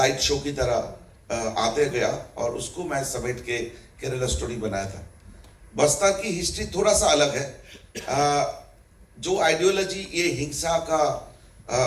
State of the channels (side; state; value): both; identical; correlation 1.00